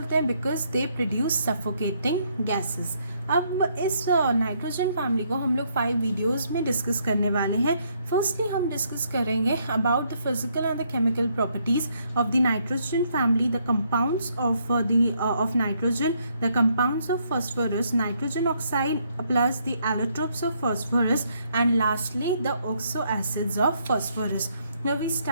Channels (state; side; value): inverted; both; correlation -0.72